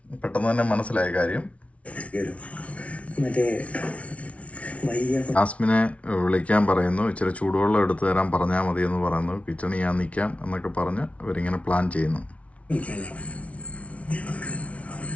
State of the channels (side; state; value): right; late; 0.064 ms